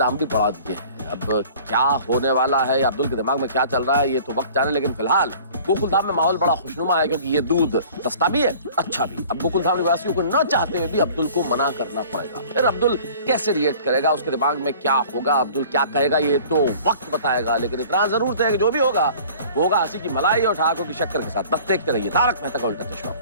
भी बढ़ा दिए हैं। अब क्या होने वाला है, अब्दुल के दिमाग में क्या चल रहा है, ये तो वक्त जाने। लेकिन फिलहाल गोकुल धाम में माहौल बड़ा खुशनुमा है, क्योंकि ये दूध सस्ता भी है, अच्छा भी। अब गोकुल धाम निवासियों को न चाहते हुए भी अब्दुल को मना करना पड़ेगा। फिर अब्दुल कैसे रिएक्ट करेगा, उसके दिमाग में क्या होगा, अब्दुल क्या कहेगा, ये तो वक्त बताएगा। लेकिन इतना जरूर है कि जो भी होगा वो होगा हंसी की मलाई और ठहाकों की शक्कर के साथ। बस देखते रहिए तारक मेहता का उल्टा चश्मा,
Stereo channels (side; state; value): both; inverted; correlation -0.47